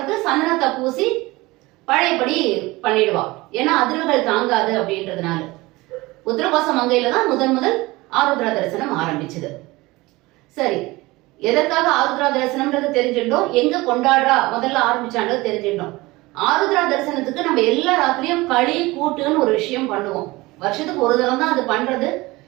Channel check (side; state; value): left; quieter; 21.1 dB